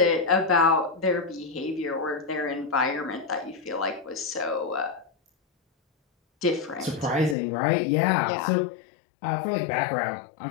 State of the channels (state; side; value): drops out; right; at 7.4 s